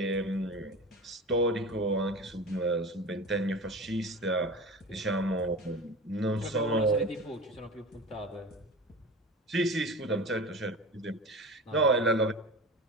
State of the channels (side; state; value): both; normal; correlation 0.31